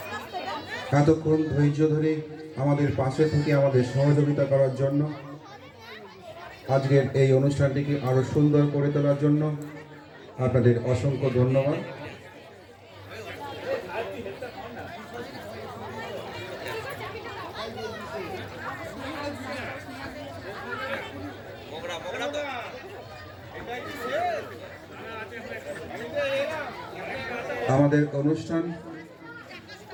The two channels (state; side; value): identical; both; correlation 1.00